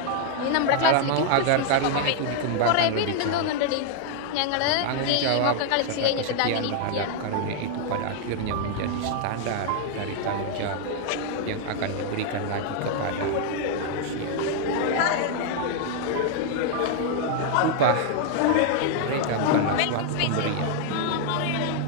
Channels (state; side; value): different; both; correlation 0.00